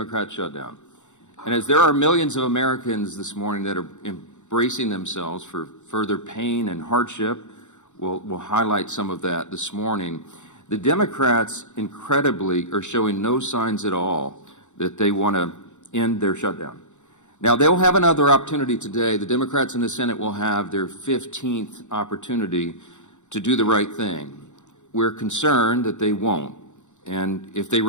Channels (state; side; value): late; right; 0.84 ms